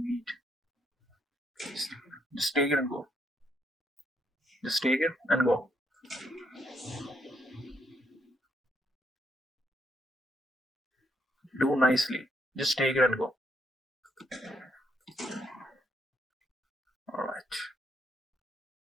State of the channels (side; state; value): both; normal; correlation 0.73